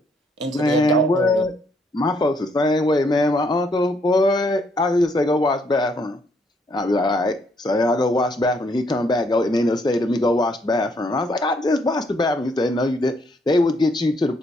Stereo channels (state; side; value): normal; both; correlation 0.71